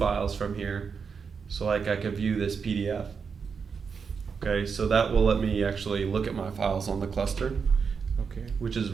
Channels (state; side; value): quieter; left; 5.8 dB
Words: from here. So like I could view this PDF. Okay, so that will let me actually look at my files on the cluster. Okay. Which is